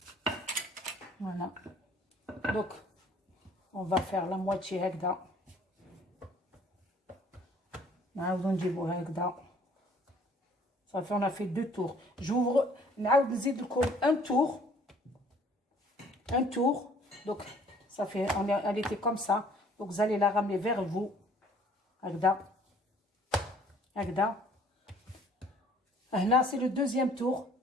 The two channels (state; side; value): normal; both; correlation 0.56